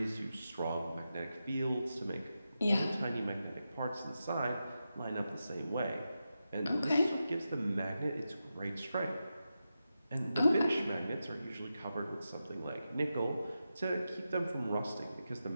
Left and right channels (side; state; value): both; inverted; correlation -0.90